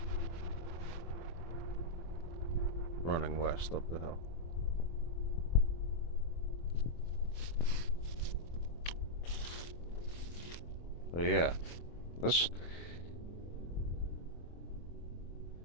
running west up the hill. So yeah, this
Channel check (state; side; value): late; right; 24 ms